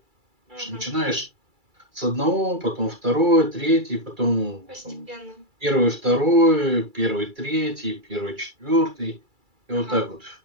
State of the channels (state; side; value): late; left; 2.3 ms